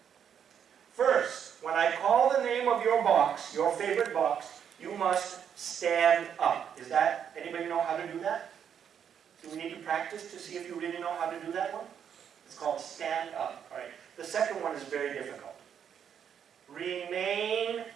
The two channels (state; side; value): quieter; left; 8.3 dB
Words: First, when I call the name of your box, your favorite box, you must stand up. Anybody know how to do that? Do we need to practice to see if you really know how to do that one? It's called stand up. All right. The second one is very difficult. Remain